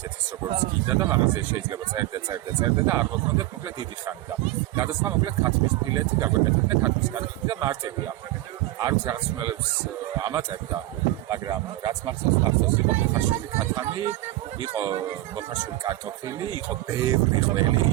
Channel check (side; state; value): left; quieter; 16.8 dB